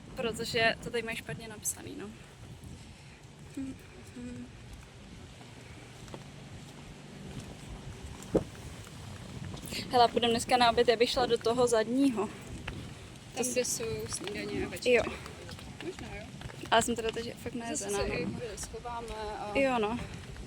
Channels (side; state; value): both; identical; correlation 1.00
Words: protože to tady mají špatně napsaný, no. Hele, půjdeme dneska na oběd, já bych šla do toho zadního. Tam, kde jsou snídaně a večeře. Jo, Možná jo. ale jsem teda teď fakt Zase nejezená. se i chvíli schováme a Jo, no,